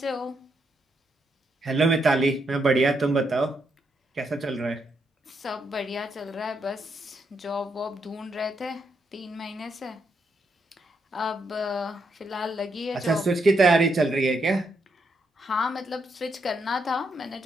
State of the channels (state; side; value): normal; both; correlation 0.79